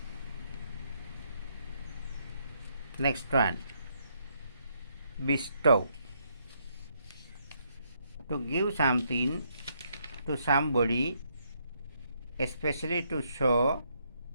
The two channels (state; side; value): inverted; both; correlation -0.74